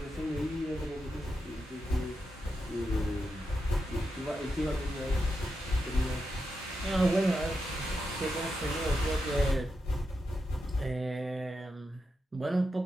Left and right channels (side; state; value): both; normal; correlation 0.87